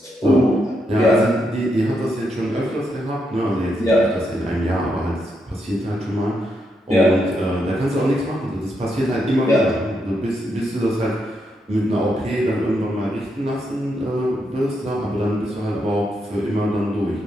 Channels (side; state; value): both; normal; correlation 0.80